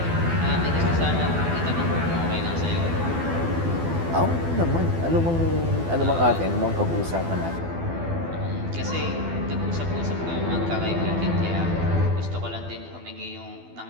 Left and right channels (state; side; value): late; left; 12 ms